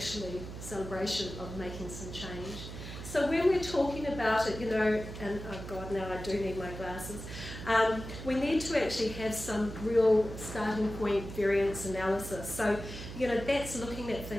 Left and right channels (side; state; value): right; noise; hum, 10 dB below the sound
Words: celebration of making some change. So when we're talking about it, and oh God, now I do need my glasses, we need to actually have some real starting point variance analysis. So, that's looking at